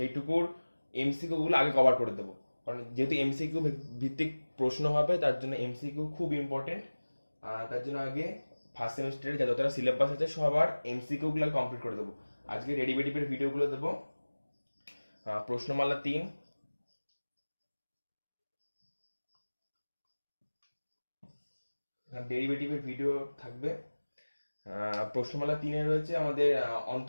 এমসিকিউগুলো আগে কভার করে দেবো। কারণ যেহেতু এমসিকিউ ভিত্তিক প্রশ্ন হবে, তার জন্য এমসিকিউ খুব ইম্পর্টেন্ট। তার জন্য আগে ফার্স্ট সেমিস্টারে যতটা সিলেবাস আছে সবার এমসিকিউগুলো কমপ্লিট করে দেবো। আজকে ডেরিভেটিভের ভিডিওগুলো দেবো। প্রশ্নমালা 3, ডেরিভেটিভের ভিডিও থাকবে। প্রশ্নমালা 3-এ রয়েছে আমাদের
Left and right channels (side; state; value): both; inverted; correlation -1.00